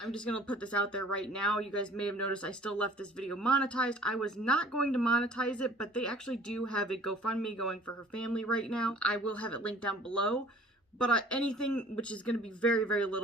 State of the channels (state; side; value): normal; both; correlation 0.50